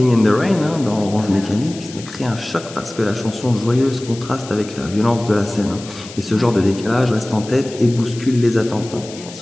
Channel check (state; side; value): noise; left; hiss, 16 dB below the sound